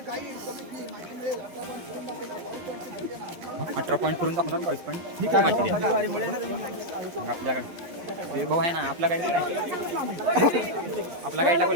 18 पॉईंट करून दाखवणार 22 पॉईंट. काय माहिती द्या आपल्याकडे भाऊ आहे ना आपला गाईड काय आपला गाईडला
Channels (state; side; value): late; left; 11 ms